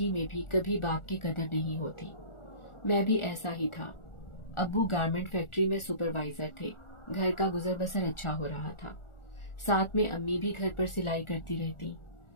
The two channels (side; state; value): right; late; 1.4 ms